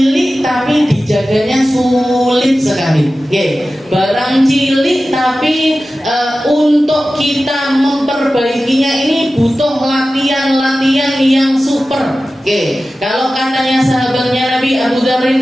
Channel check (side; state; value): both; normal; correlation 0.95